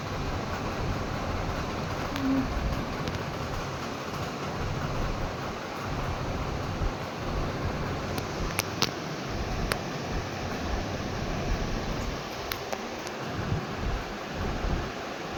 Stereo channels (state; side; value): identical; both; correlation 1.00